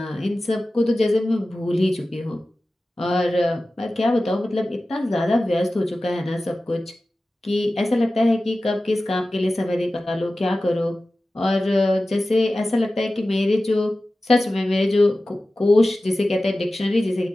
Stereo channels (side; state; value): both; normal; correlation 0.95